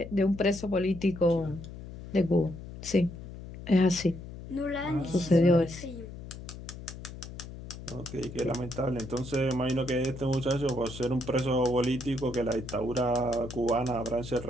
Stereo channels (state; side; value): noise; left; hum, 12 dB below the sound